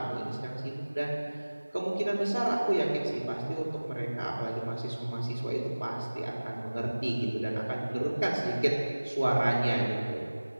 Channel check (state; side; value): inverted; both; correlation -1.00